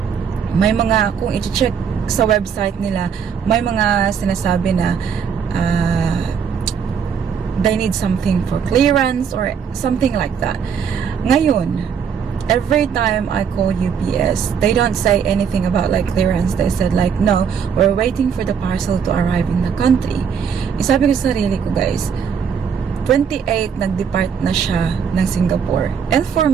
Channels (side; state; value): left; quieter; 7.0 dB